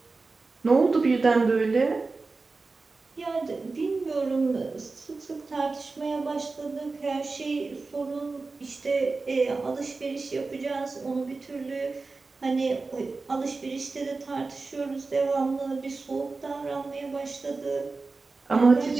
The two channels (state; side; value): quieter; left; 3.9 dB